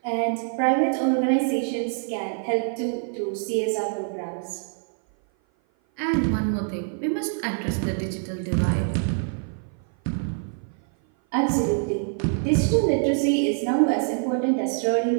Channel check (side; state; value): left; silent; 56 dB below the other